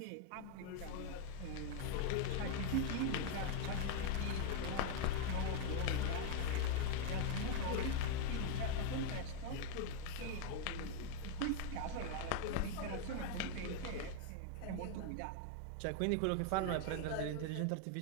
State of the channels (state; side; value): different; both; correlation 0.00